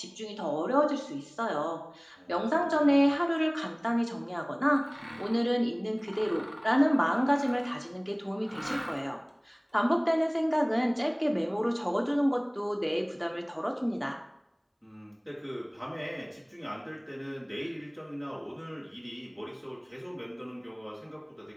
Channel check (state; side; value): identical; both; correlation 1.00